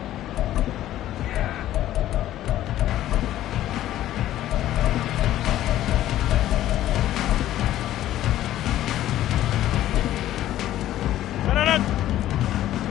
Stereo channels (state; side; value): quieter; right; 13.3 dB